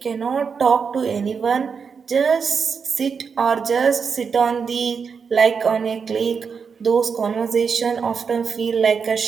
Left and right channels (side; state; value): left; quieter; 5.9 dB